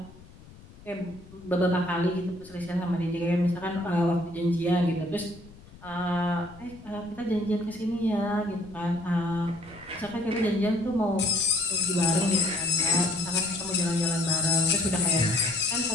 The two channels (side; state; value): left; noise; rumble, 21 dB below the sound